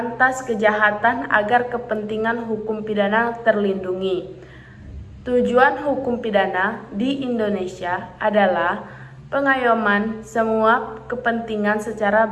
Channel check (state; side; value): identical; both; correlation 1.00